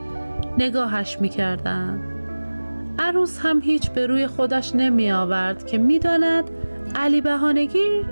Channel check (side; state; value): both; inverted; correlation -1.00